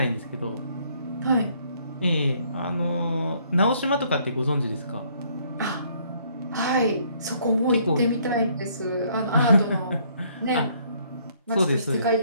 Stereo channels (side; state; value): both; inverted; correlation -0.65